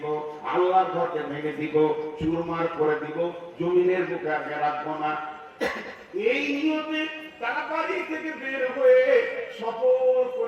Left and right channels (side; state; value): both; identical; correlation 1.00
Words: আল্লাহর ঘরকে ভেঙে দিব চুরমার করে দিব জমিনের বুকে আর রাখবো না এই নিয়তে তারা বাড়ি থেকে বের হয়ে সফর